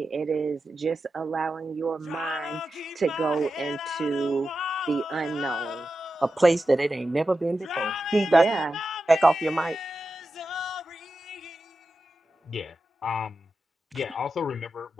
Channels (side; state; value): both; normal; correlation 0.91